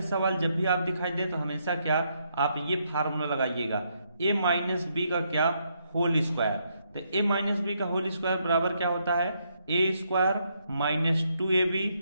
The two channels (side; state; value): both; inverted; correlation -0.76